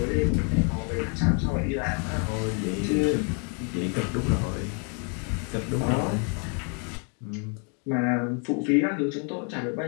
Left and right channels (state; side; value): quieter; right; 38.8 dB